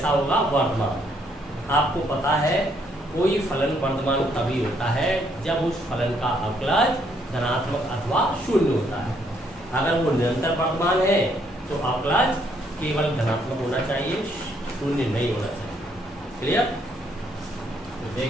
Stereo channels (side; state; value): both; normal; correlation 0.70